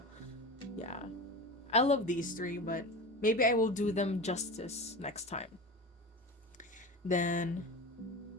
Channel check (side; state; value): both; normal; correlation 0.29